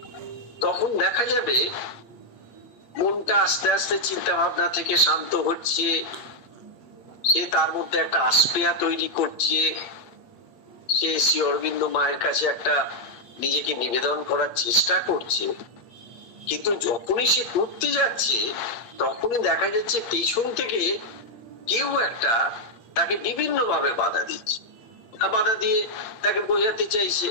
তখন দেখা যাবে মনটা আস্তে আস্তে চিন্তা ভাবনা থেকে শান্ত হচ্ছে, সে তার মধ্যে একটা আস্পেয়া তৈরি করছে, সে শ্রী অরবিন্দ মায়ের কাছে একটা নিজেকে নিবেদন করার চেষ্টা করছে। কিন্তু যখনই সে করতে যাচ্ছে, তখনই দেখা যাচ্ছে পেছন থেকে কেউ একটা তাকে বিভিন্ন ভাবে বাধা দিচ্ছে, বাধা দিয়ে তাকে বোঝাতে চাইছে,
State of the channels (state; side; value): late; right; 8.4 ms